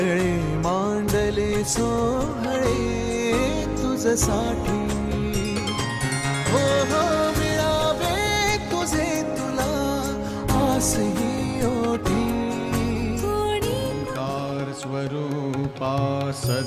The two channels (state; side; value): identical; both; correlation 1.00